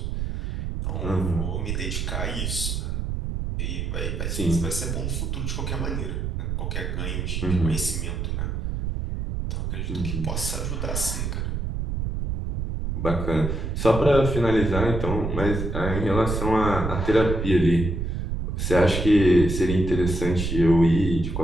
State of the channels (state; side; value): noise; right; rumble, 2 dB below the sound